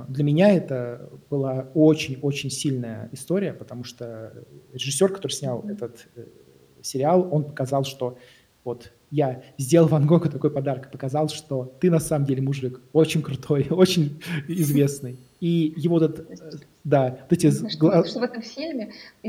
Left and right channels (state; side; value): identical; both; correlation 1.00